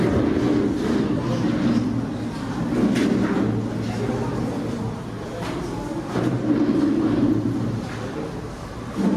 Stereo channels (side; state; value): both; identical; correlation 1.00